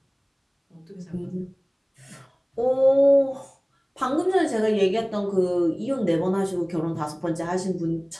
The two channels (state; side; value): identical; both; correlation 1.00